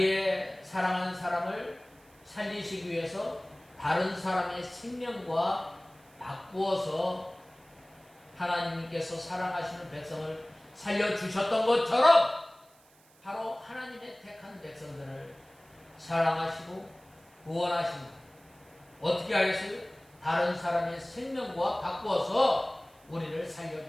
사랑하는 사람을 살리시기 위해서 다른 사람의 생명과 바꾸어서 하나님께서 사랑하시는 백성을 살려주셨던 것처럼 바로 하나님의 택한 백성들을 사랑하시고 구원하십니다. 어떻게 하겠어요? 다른 사람의 생명과 바꾸어서 우리를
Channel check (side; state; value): right; noise; hiss, 29 dB below the sound